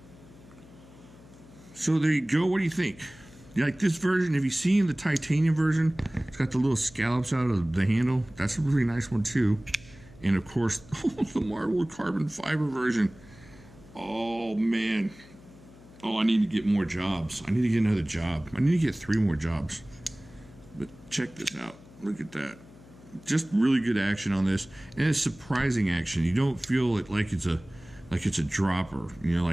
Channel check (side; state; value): left; noise; hum, 22 dB below the sound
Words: So there you go. What do you think? You like this version? Have you seen the titanium version? It's got the little scallops out of the handle. That's a really nice one too. And of course, the marbled carbon fiber version. Oh man. Oh, I need to get more jobs. I need to get another job. I need to get 3 more jobs. But check this out. Look at that. Just really good action on this, and it's surprising action. You don't feel it like it's a dropper,